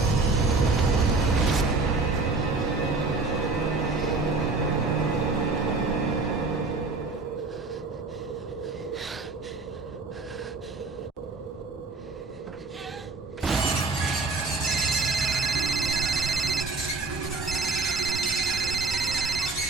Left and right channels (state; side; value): quieter; left; 3.8 dB